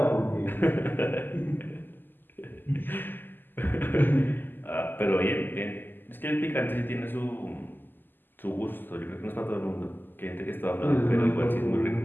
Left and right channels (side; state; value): right; late; 0.091 ms